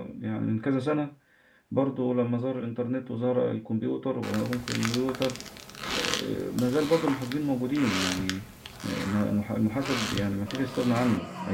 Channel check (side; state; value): both; identical; correlation 1.00